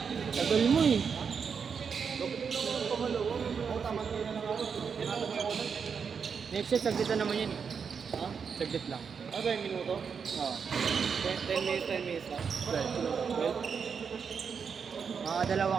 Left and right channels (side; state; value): left; quieter; 6.3 dB